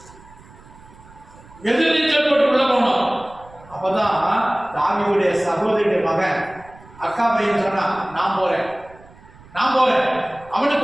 எதிர்நீச்சல் போட்டு உள்ள போகணும். அப்பதான் தாவீதுடைய சகோதரியுடைய மகன் அக்கா பையன் சொன்னா, நான் போறேன்.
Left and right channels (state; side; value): noise; right; rumble, 23 dB below the sound